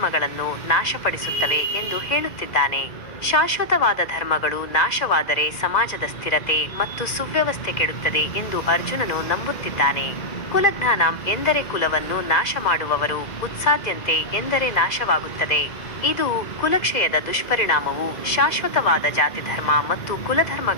ನಾಶಪಡಿಸುತ್ತವೆ ಎಂದು ಹೇಳುತ್ತಿದ್ದಾನೆ. ಶಾಶ್ವತವಾದ ಧರ್ಮಗಳು ನಾಶವಾದರೆ ಸಮಾಜದ ಸ್ಥಿರತೆ ಮತ್ತು ಸುವ್ಯವಸ್ಥೆ ಕೆಡುತ್ತದೆ ಎಂದು ಅರ್ಜುನನು ನಂಬುತ್ತಿದ್ದಾನೆ. ಕುಲಜ್ಞಾನಂ ಎಂದರೆ ಕುಲವನ್ನು ನಾಶ ಮಾಡುವವರು, ಉತ್ಸಾದ್ಯಂತೆ ಎಂದರೆ ನಾಶವಾಗುತ್ತದೆ. ಇದು ಕುಲಕ್ಷಯದ ದುಷ್ಪರಿಣಾಮವು ಶಾಶ್ವತವಾದ ಜಾತಿಧರ್ಮ ಮತ್ತು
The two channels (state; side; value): late; right; 1.9 ms